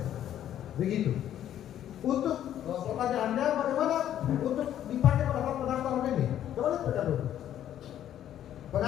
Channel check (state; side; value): quieter; right; 11.1 dB